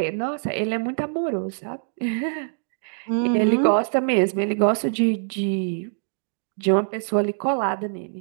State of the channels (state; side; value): silent; left; digital silence